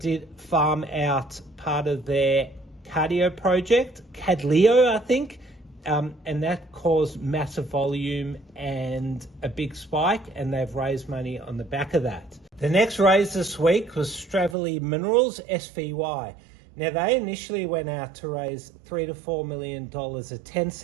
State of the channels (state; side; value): drops out; left; at 14.6 s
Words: farm out part of their cardio project, Cadleo, I think, and that caused massive volume and a big spike, and they've raised money on the back of that. The next raise this week was Stravely Minerals, SVY. Now, they initially went out to raise $3 to $4 million at 10